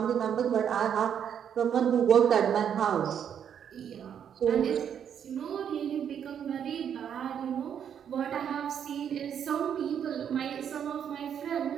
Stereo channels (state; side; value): quieter; left; 8.5 dB